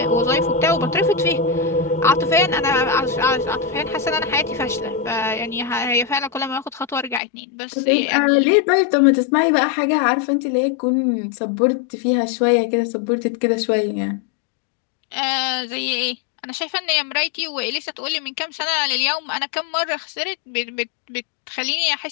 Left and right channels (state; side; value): drops out; right; at 7.2 s